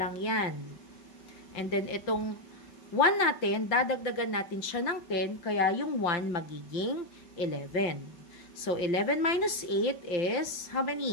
yan. And then, itong 1 natin, dadagdagan natin siya ng 10, kaya yung 1 magiging 11. So, 11 minus 8 is, how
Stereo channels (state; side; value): late; right; 5.8 ms